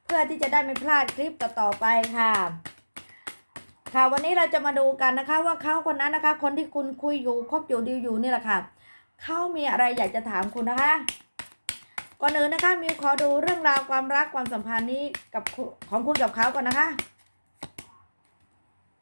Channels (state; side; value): inverted; both; correlation -1.00